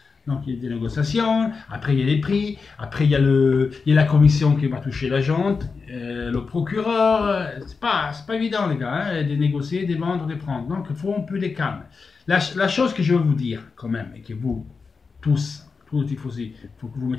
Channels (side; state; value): right; quieter; 4.8 dB